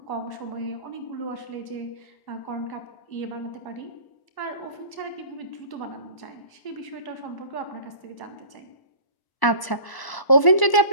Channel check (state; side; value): late; right; 1.0 ms